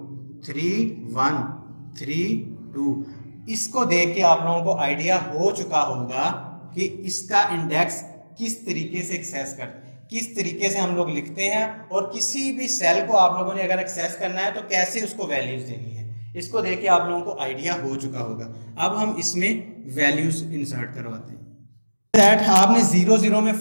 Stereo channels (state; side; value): inverted; both; correlation -1.00